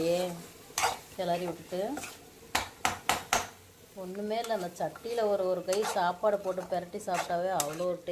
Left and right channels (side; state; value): both; identical; correlation 1.00